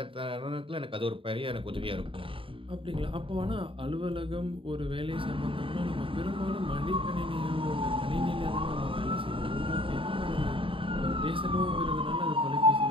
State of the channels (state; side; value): late; left; 0.25 ms